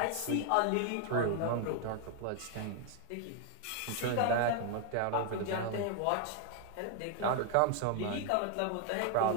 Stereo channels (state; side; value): different; both; correlation 0.00